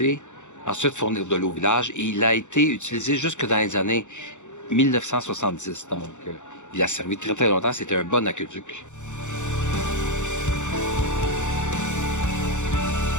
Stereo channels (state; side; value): late; right; 0.84 ms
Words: Ensuite, fournir de l'eau au village. Et il a été utilisé jusque dans les années 1970. Donc, il a servi très très longtemps. C'était un bon aqueduc.